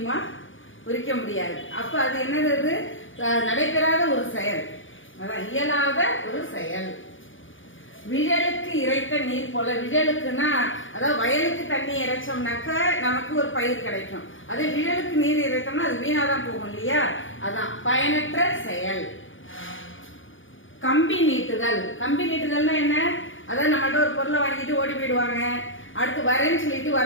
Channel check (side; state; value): right; late; 0.57 ms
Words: உரிக்க முடியாது. அப்ப அது என்னது? நடைபெறாத ஒரு செயல், அதான் இயலாத ஒரு செயல். விழலுக்கு இறைத்த நீர் போல. விழலுக்குன்னா அதாவது வயலுக்கு தண்ணி இறைச்சோம்னாக்க நமக்கு ஒரு பயிர் கிடைக்கும். அதே விழலுக்கு நீர் இறைத்தோம்னா அது வீணாதான் போகும் இல்லையா? அதான் பயனற்ற செயல். கம்பி நீட்டுதல். கம்பி நீட்டுதல்னா என்ன? அதான் நம்மகிட்ட ஒரு பொருளை வாங்கிட்டு ஓடி போயிடுவாங்க, அடுத்து வரேன்னு சொல்லிட்டு